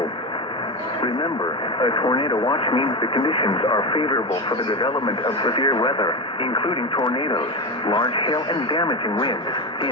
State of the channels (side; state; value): both; normal; correlation 0.18